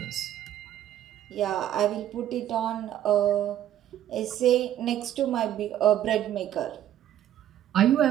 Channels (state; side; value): quieter; left; 11.7 dB